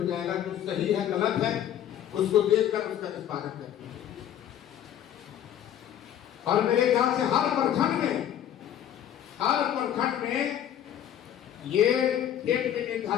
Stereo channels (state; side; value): quieter; right; 10.5 dB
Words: जाएगा, जो सही है गलत है उसको देखकर उसका निष्पादन करेंगे। और मेरे ख्याल से हर प्रखंड में ये डेट भी